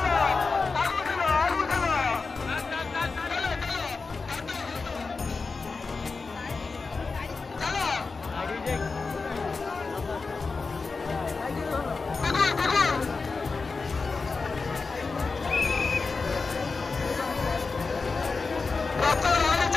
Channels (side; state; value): right; quieter; 4.3 dB